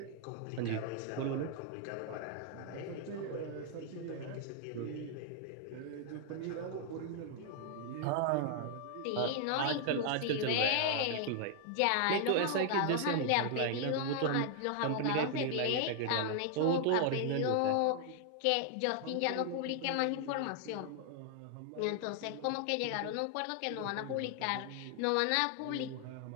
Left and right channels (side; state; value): both; different; correlation 0.00